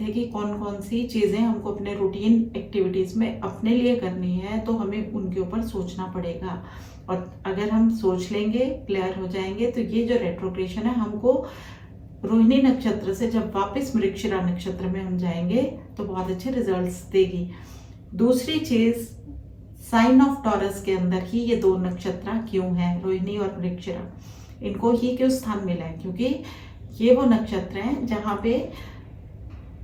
कि कौन कौन सी चीज़ें हमको अपने रूटीन एक्टिविटीज़ में अपने लिए करनी है, तो हमें उनके ऊपर सोचना पड़ेगा। और अगर हम सोच लेंगे, क्लियर हो जाएंगे, तो ये जो रेट्रोग्रेशन है हमको रोहिणी नक्षत्र से जब वापस मृगशिरा नक्षत्र में हम जाएंगे तो बहुत अच्छे रिजल्ट्स देगी। दूसरी चीज, साइन ऑफ टॉरस के अंदर ही ये दो नक्षत्र क्यों हैं, रोहिणी और मृगशिरा, इनको ही क्यों स्थान मिला है, क्योंकि ये वो नक्षत्र हैं जहाँ पे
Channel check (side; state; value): both; identical; correlation 1.00